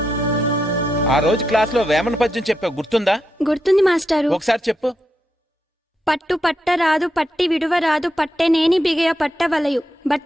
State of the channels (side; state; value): both; normal; correlation 0.84